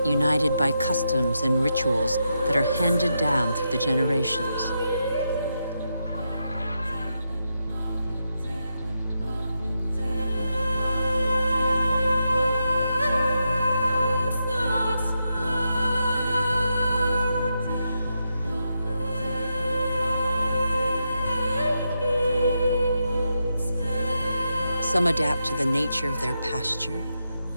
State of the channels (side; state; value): both; inverted; correlation -0.85